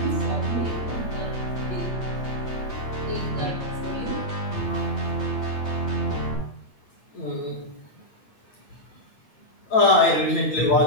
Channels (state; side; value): late; right; 8.8 ms